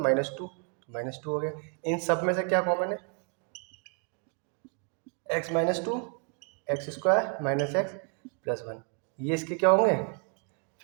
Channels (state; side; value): quieter; left; 39.1 dB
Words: -2, -2 हो गया। इन सब में से क्या कॉमन है, x -2, x square minus x plus 1, ये इसके क्या होंगे